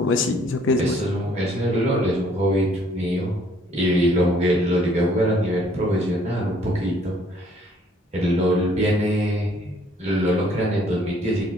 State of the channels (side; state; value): both; normal; correlation 0.62